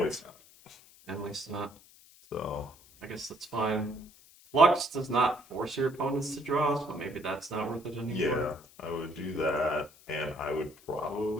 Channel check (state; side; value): noise; left; hiss, 24 dB below the sound